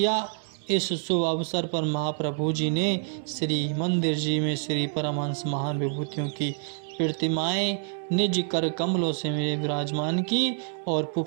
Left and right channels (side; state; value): left; silent; digital silence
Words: इस शुभ अवसर पर महाप्रभु जी ने श्री मंदिर जी में श्री परमहंस महान विभूतियों की प्रतिमाएं निज कर कमलों से विराजमान की और